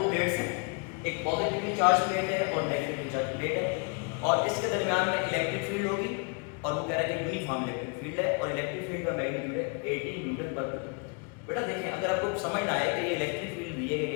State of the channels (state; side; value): quieter; right; 34.9 dB